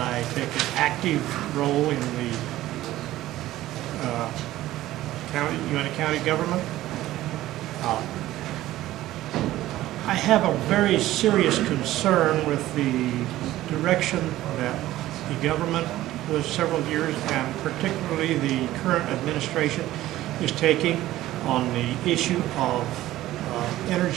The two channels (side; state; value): left; quieter; 15.2 dB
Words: take an active role in the Uinta County government. I have a very serious concern with the direction that the government was several years, and particularly the current administration, is taking on the issue of